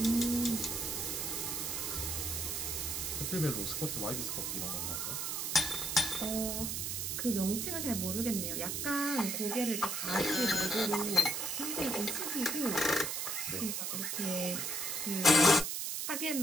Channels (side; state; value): right; noise; hiss, 2 dB below the sound